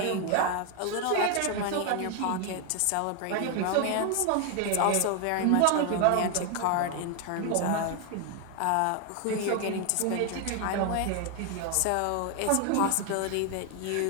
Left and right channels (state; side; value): different; both; correlation 0.01